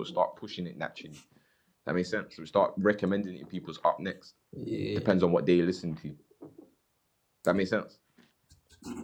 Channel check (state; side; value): identical; both; correlation 1.00